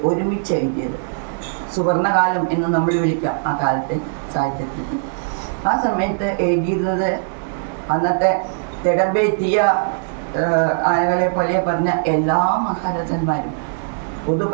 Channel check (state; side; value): silent; left; 62 dB below the other